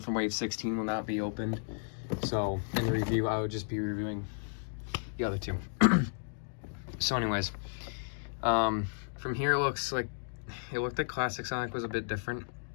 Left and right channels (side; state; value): right; silent; digital silence